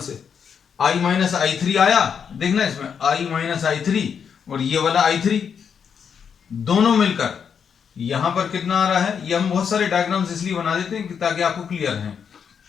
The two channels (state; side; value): quieter; right; 7.1 dB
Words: I माइनस I3 आया, देखना इसमें I माइनस I3 और ये वाला I3 दोनों मिलकर यहां पर कितना आ रहा है। ये हम बहुत सारे डायग्राम्स इसलिए बना देते हैं ताकि आपको क्लियर है।